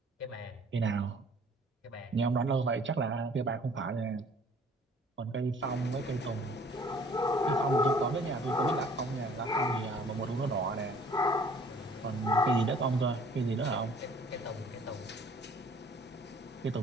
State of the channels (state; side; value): normal; both; correlation 0.54